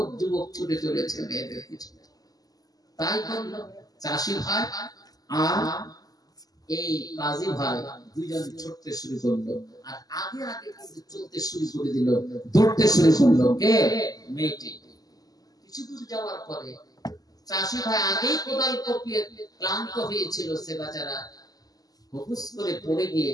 যুবক ছুটে চলেছে মেয়েদের পিছনে। তাই করলো চাষি ভাই আর এই কাজী ভাই, দুইজন ছুটতে শুরু করলো। আর আগে আগে কিন্তু চলতে শুরু করে দিল, দৌড়তে শুরু করলো। কে? মেয়েটি। কিছু দূর যাওয়ার পরে চাষি ভাই আগেই কোদাল কোপিয়ে ক্লান্ত হয়েছিল, সে বেচারা হুকুস করে পড়ে গিয়ে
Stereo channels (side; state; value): right; late; 0.18 ms